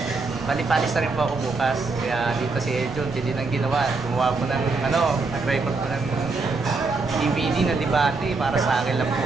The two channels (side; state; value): left; quieter; 3.9 dB